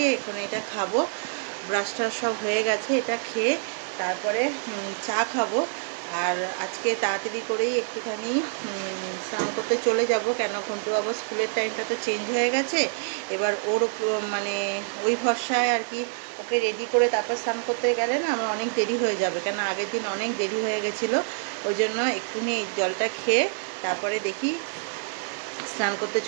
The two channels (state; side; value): silent; left; 60 dB below the other